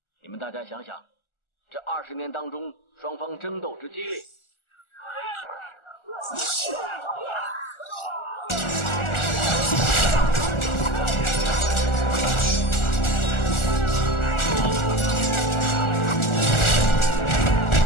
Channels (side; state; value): right; late; 1.4 ms